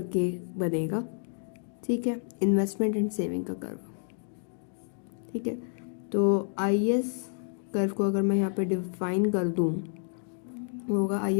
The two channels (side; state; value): right; silent; 58 dB below the other